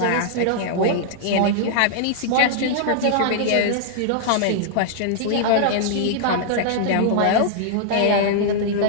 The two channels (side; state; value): both; different; correlation -0.01